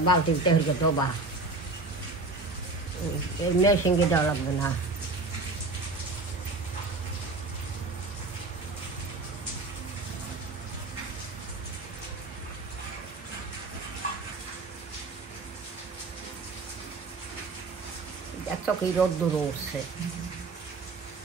বালতিতে হইকে দেবা মেশিনকে দেওয়া লাগবে না। দেখছো কি রোদ্দুর উঠছে,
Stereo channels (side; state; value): left; quieter; 3.4 dB